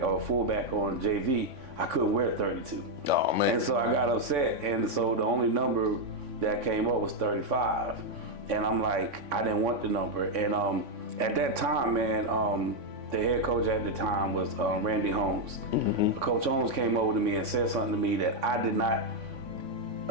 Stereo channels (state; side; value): late; left; 3.6 ms